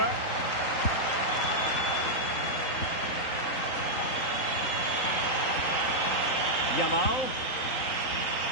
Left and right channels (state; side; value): late; right; 3.8 ms